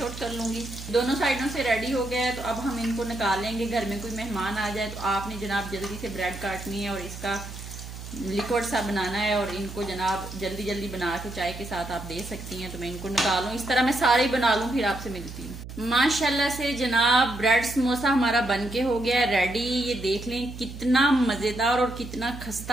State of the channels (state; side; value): noise; right; hum, 11 dB below the sound